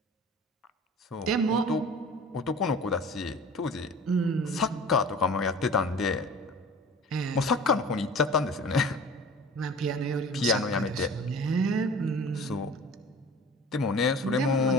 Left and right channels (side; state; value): both; normal; correlation 0.42